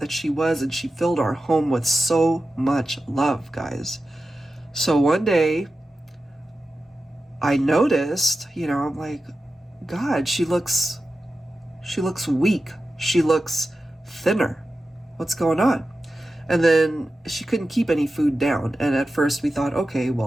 she was, and she filled our home with so much love, guys. So one day, I noticed, you know, I'm like, God, she looks weak. She looks thinner. What's going on? And then she couldn't keep any food down. And at first we thought, okay,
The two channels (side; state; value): both; normal; correlation 0.93